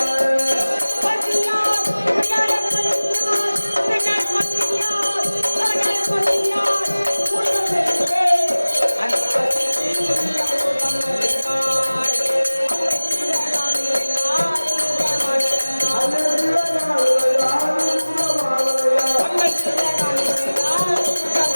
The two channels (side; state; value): both; inverted; correlation -1.00